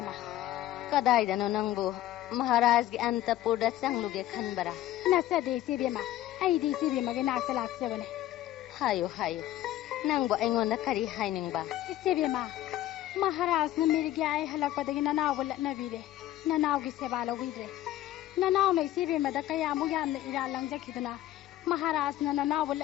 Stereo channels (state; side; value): quieter; right; 13.9 dB